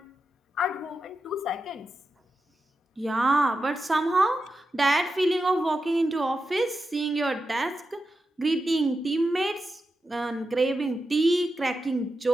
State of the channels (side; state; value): both; normal; correlation 0.89